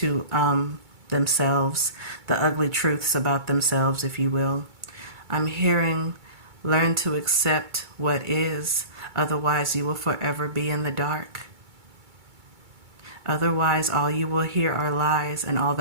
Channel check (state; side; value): late; left; 2.3 ms